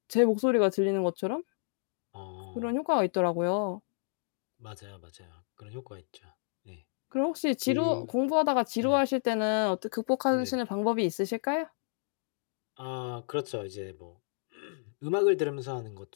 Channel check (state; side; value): silent; right; digital silence